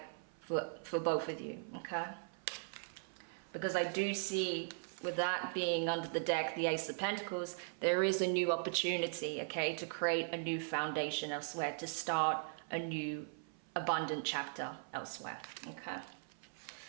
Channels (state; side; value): silent; left; 52 dB below the other